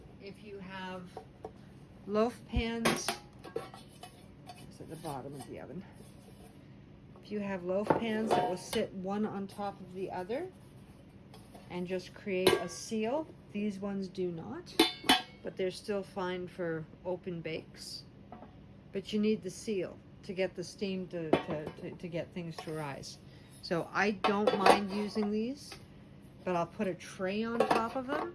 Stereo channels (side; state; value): both; identical; correlation 1.00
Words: If you have loaf pans, it's at the bottom of the oven. If you have loaf pans that will sit one on top of the other and just create a seal, these ones do not, but they're still fine for open bakes. But you need the seal to get the steam to get things to rise. So I don't mind using these, but I'll put a tray on top of